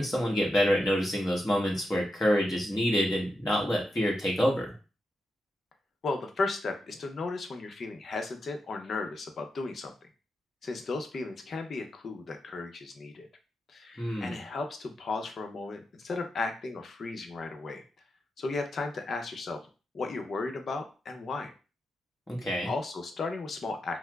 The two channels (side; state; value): both; normal; correlation 0.87